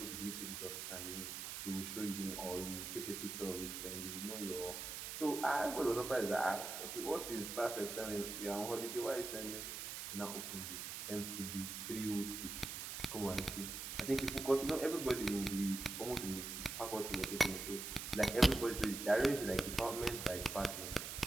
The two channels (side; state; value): right; noise; hiss, 6 dB below the sound